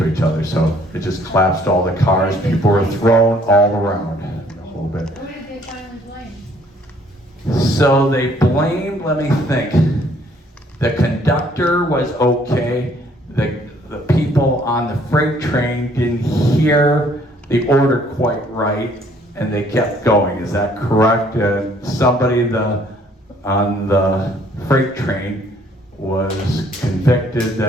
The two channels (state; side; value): normal; both; correlation 0.62